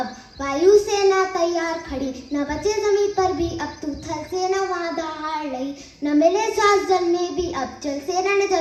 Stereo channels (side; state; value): both; identical; correlation 1.00